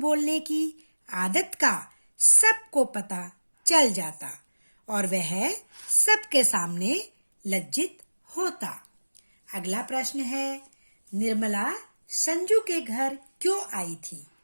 की आदत का सबको पता चल जाता और वह सबके सामने लज्जित होता। अगला प्रश्न है, निर्मला संजू के घर क्यों आई थी।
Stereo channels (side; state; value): both; inverted; correlation -1.00